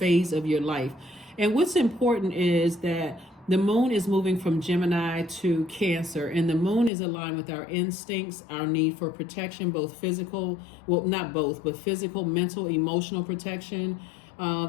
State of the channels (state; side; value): drops out; right; at 6.9 s